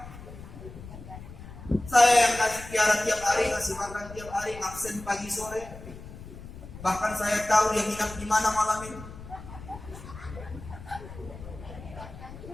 Saya yang kasih piara tiap hari, kasih makan tiap hari, absen pagi sore. Bahkan saya tahu dia nginap di mana malam ini.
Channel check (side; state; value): left; noise; rumble, 14 dB below the sound